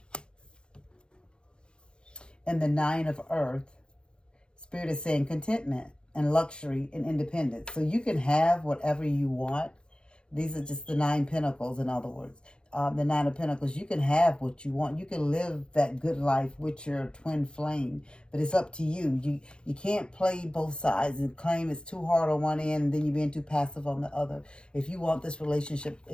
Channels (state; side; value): late; right; 0.052 ms